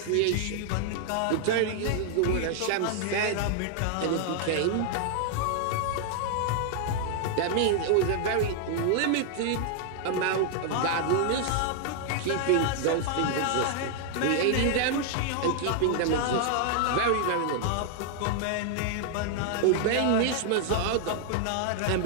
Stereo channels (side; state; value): both; different; correlation 0.00